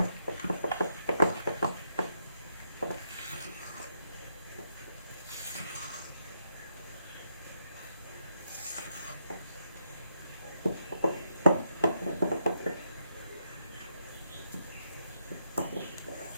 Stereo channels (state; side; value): inverted; both; correlation -0.79